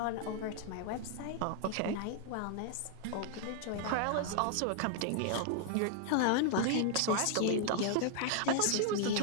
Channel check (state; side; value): different; both; correlation 0.00